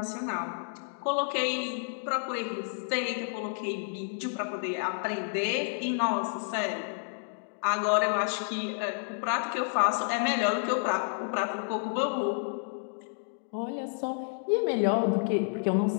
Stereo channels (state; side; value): silent; right; digital silence